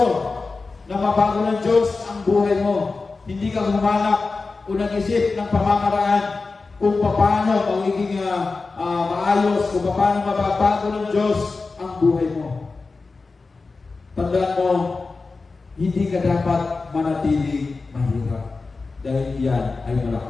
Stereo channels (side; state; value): right; quieter; 4.0 dB